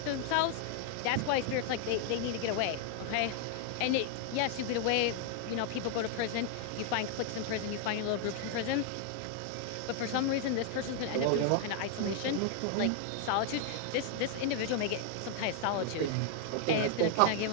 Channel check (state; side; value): different; both; correlation 0.00